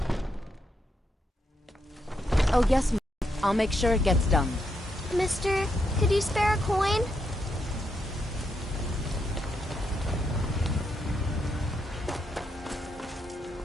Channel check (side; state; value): both; normal; correlation 0.80